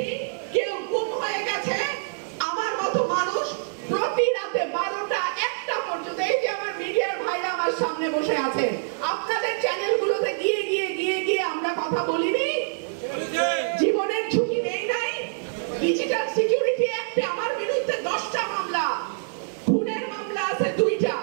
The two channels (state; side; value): silent; left; 61 dB below the other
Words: কেউ গুম হয়ে গেছে। আমার মতো মানুষ প্রতি রাতে 12টা 1টা পর্যন্ত, এই যে আমার মিডিয়ার ভাইরা আমার সামনে বসে আছে, আপনাদের চ্যানেলগুলোতে গিয়ে গিয়ে গিয়ে গিয়ে আমরা কথা বলিনি? জীবনের ঝুঁকি নেই নাই? ডিজিটাল সিকিউরিটি অ্যাক্টে আমার বিরুদ্ধে 10টা মামলা, খুনের মামলা আছে 2টা।